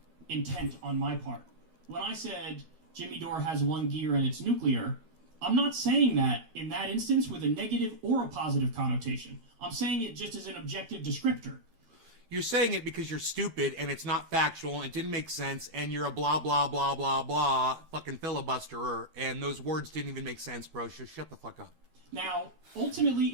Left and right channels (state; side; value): late; left; 13 ms